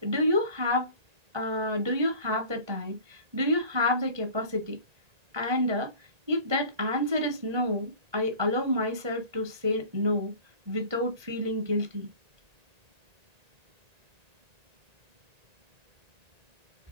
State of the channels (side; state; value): left; late; 1.8 ms